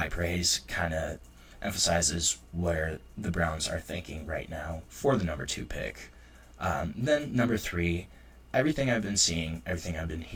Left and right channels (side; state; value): both; identical; correlation 1.00